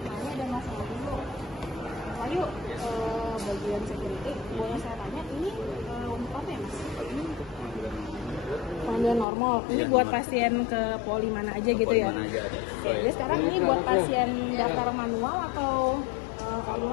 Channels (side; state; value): right; drops out; at 9.2 s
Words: Ini ada masalah dulu. Lalu bagian security, boleh saya tanya ini untuk apa ya Mas? Ini panggilan normal. Ini buat pasien ke poli mana aja gitu ya? Jadi sekarang ini buat pasien daftar manual atau